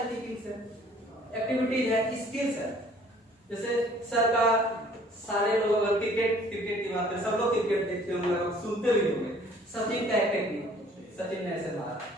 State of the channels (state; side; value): normal; both; correlation 0.56